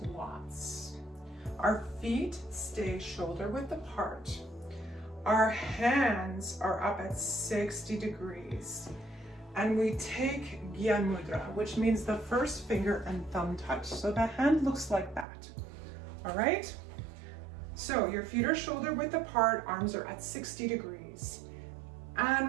Our feet stay shoulder width apart. Our hands are up at 60 degrees. And we take Gyan Mudra, which means the first finger and thumb touch. So the hand looks like that. All right? So your feet are shoulder width apart, arms are at 60 degrees.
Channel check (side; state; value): left; drops out; at 15.2 s